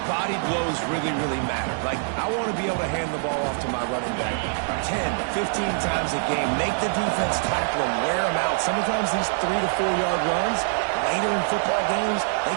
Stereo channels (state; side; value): silent; left; digital silence